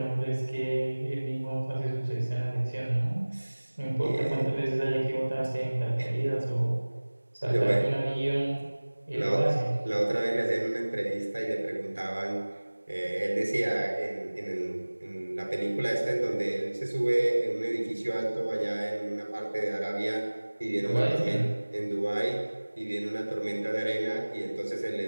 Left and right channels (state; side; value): inverted; both; correlation -1.00